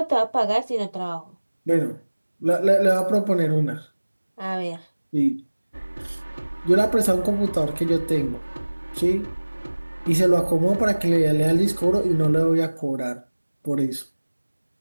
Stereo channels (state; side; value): inverted; both; correlation -1.00